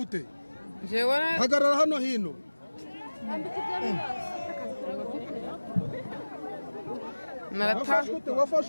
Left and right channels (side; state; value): both; inverted; correlation -1.00